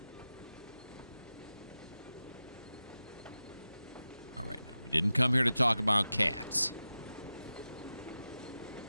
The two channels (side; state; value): both; inverted; correlation -0.93